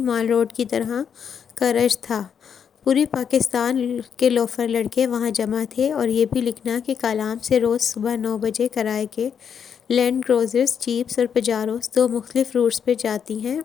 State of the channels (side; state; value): right; quieter; 7.6 dB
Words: مال روڈ کی طرح کا رش تھا۔ پوری پاکستان کے لوفر لڑکے وہاں جمع تھے۔ اور یہ بھی لکھنا کہ کالام سے روز صبح 9 بجے کرائے کے لینڈ کروزرز، جیپس اور پجاروز 2 مختلف روٹس پہ جاتی ہیں۔